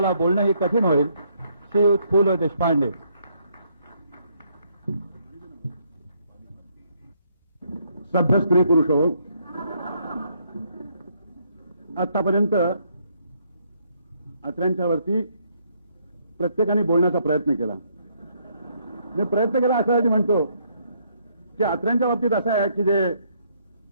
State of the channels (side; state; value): both; inverted; correlation -0.70